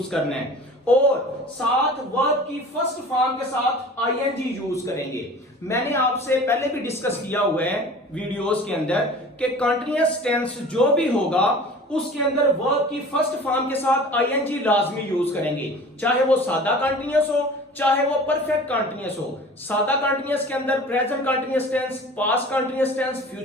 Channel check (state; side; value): normal; both; correlation 0.42